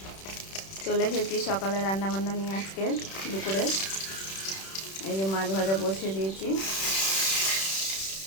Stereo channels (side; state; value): right; late; 31 ms